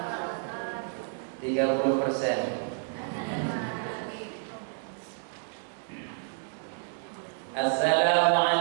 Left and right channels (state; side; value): silent; left; digital silence